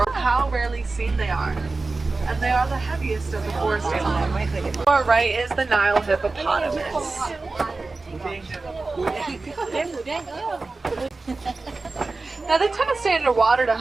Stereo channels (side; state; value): left; quieter; 3.6 dB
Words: How rarely seen they are. And they are the heaviest of the forest animals. To our right is the Nile hippopotamus. Now they tend to stay underwater to